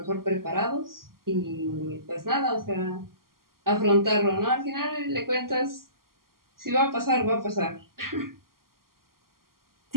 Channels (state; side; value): late; left; 0.92 ms